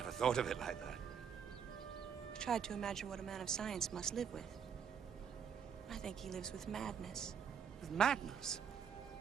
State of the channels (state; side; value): quieter; left; 7.4 dB